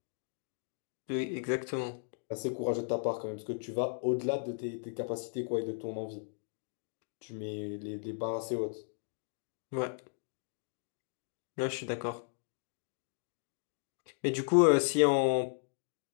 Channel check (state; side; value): silent; right; digital silence